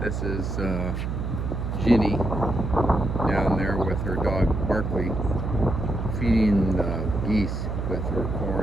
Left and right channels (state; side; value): noise; right; hum, 3 dB below the sound